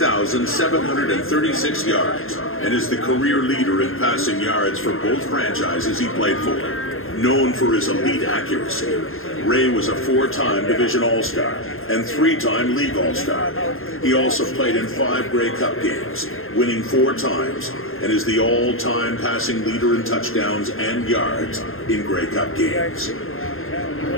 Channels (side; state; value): right; late; 0.60 ms